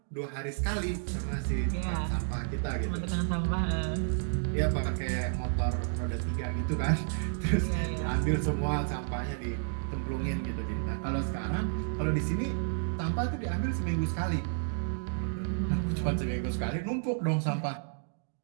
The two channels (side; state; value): left; silent; digital silence